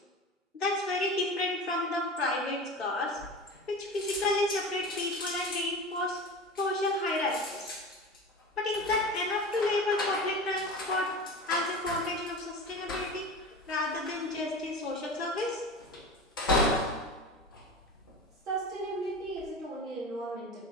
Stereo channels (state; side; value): normal; both; correlation 0.32